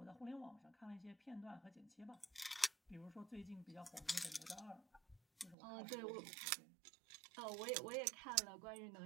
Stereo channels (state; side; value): drops out; left; at 5.6 s